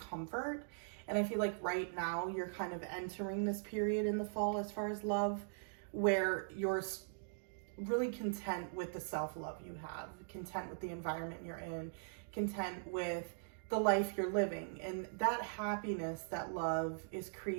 And I feel like right now you're kind of entering this period in the fall as far as love, where you're really content with the self-love you have, content with the environment you're in, content with the life you're living. And that happiness, that love is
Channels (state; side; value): silent; left; digital silence